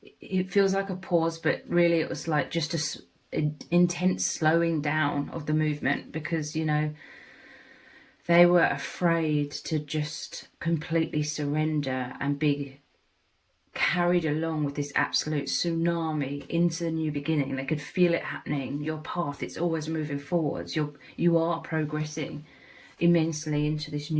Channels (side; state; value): both; identical; correlation 1.00